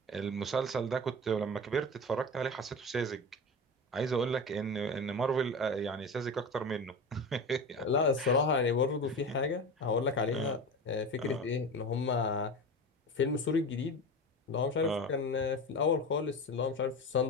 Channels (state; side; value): normal; both; correlation 0.28